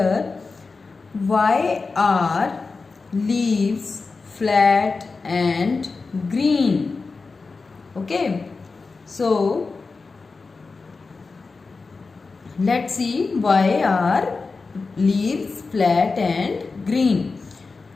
Why are leaves flat and green? Okay, so see why are leaves flat and green.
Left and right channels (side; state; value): right; quieter; 4.2 dB